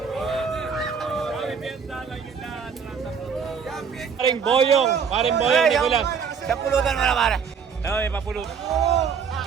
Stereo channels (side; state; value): left; quieter; 6.5 dB